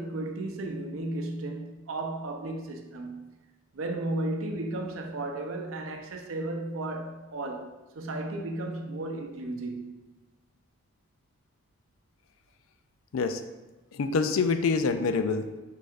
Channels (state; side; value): normal; both; correlation 0.25